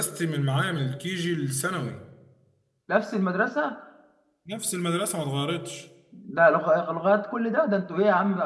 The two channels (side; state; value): both; identical; correlation 1.00